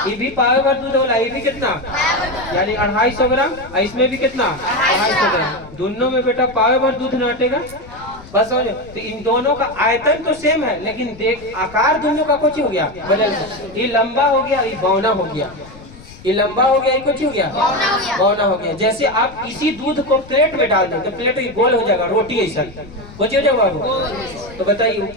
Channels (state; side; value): noise; left; rumble, 19 dB below the sound